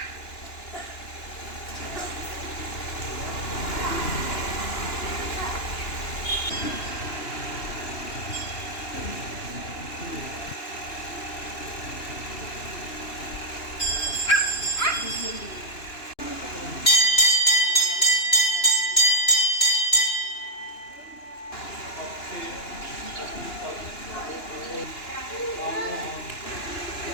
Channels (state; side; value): late; right; 2.9 ms